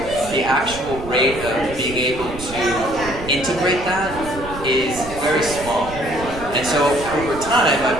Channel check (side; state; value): right; noise; rumble, 12 dB below the sound